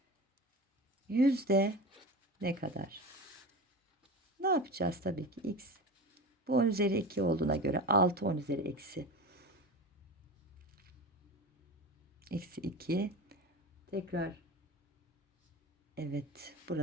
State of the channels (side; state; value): both; normal; correlation 0.30